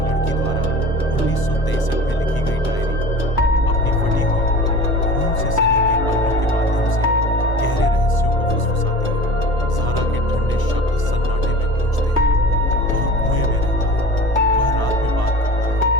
द्वारा 1963 में लिखी गई डायरी, अपनी फटी हुई खून से सनी हुई पन्नों के माध्यम से गहरे रहस्यों को फुसफुसाती है। ज़ारा के ठंडे शब्द सन्नाटे में गूंजते हैं। वह कुएं में रहता है, वह रात में बात करता है,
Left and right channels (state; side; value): late; right; 1.0 ms